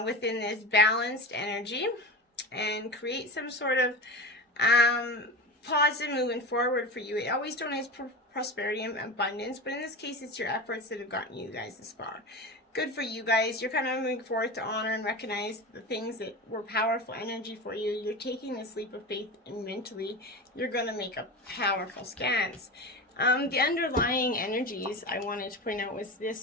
within this balanced energy and create some sort of positive movement forward for you. It always donates prosperity and abundance, but in this case, it's your efforts that have gotten you guys this far. good for you guys. You're kind of moving forward to honor and recognize the things that were powerful energy for you. You're taking this leap of faith, and mentally you're going to make a powerful stance. The underlying energies I wanted to point out was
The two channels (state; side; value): normal; both; correlation 0.27